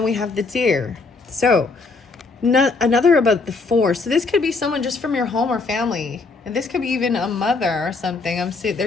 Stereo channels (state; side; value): quieter; right; 4.0 dB